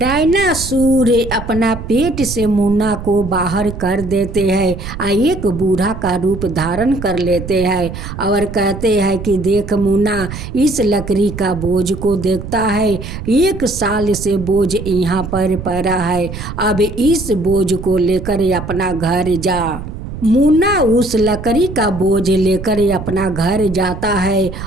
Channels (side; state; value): right; noise; rumble, 9 dB below the sound